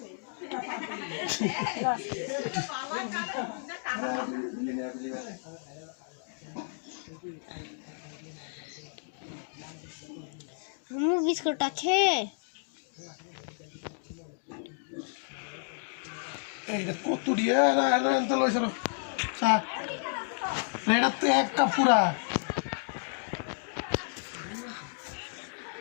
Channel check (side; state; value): right; silent; 57 dB below the other